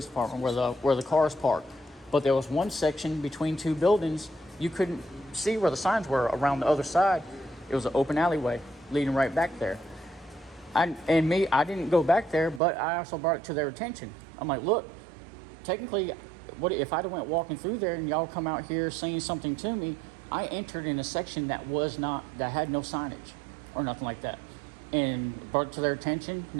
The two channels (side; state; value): left; drops out; at 12.6 s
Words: department where the cars parked. But there was one section between two buildings. You couldn't see where the signs were around the other side. It was an open alleyway leading right back there. I didn't go back there, but I also brought it to their attention. I'm like, look, technically, what if I'd have went walking through there and y'all come out here saying something to me? I entered in a section that had no signage or nothing like that, and brought it to their attention.